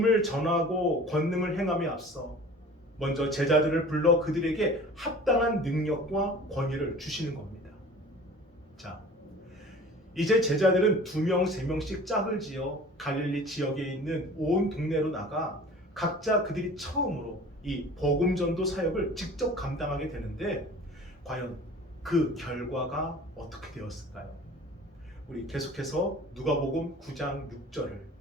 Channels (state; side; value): normal; both; correlation 0.43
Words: 전하고 권능을 행함에 앞서 먼저 제자들을 불러 그들에게 합당한 능력과 권위를 주시는 겁니다. 자, 이제 제자들은 2명, 3명씩 짝을 지어 갈릴리 지역에 있는 온 동네로 나가 각자 그들이 처음으로 이 복음 전도 사역을 직접 감당하게 되는데 과연 그 결과가 어떻게 되었을까요? 우리 계속해서 누가복음 9장 6절을